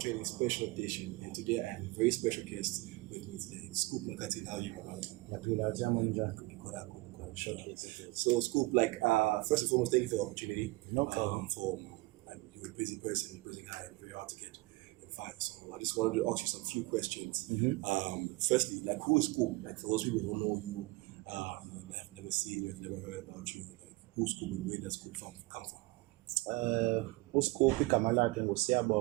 Special Edition. And today I have a very special guest with me today, Scoop Makhathini. How are you, my brother? So, Scoop, first and foremost, thank you for the opportunity. No problem. You're a busy person, you're a busy guy, and very hard to get and find. So, I just wanted to ask you some few questions. Firstly, who is Scoop? For those people who don't know you, have never seen you, have never heard about you, who's Scoop and where does Scoop come from? uScoop igama lakhe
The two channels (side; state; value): left; quieter; 22.5 dB